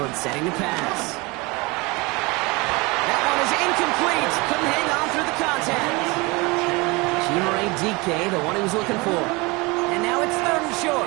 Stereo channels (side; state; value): left; quieter; 25.3 dB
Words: setting the pass. That one is incomplete. Couldn't hang on through the contact. Chimere DK, the one he was looking for. And now it's 3rd and